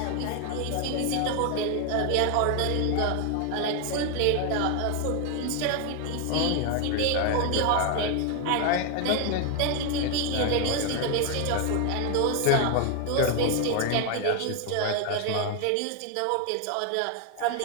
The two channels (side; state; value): both; different; correlation 0.01